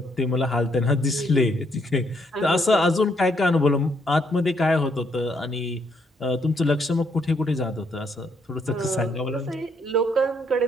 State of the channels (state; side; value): normal; both; correlation 0.72